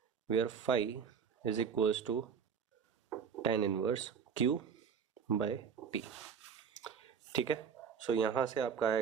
where phi is equals to tan inverse Q by P। ठीक है, सो यहाँ से आपका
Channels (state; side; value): quieter; left; 6.8 dB